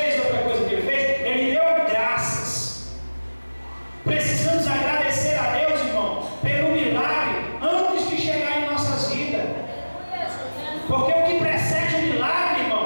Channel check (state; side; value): inverted; both; correlation -1.00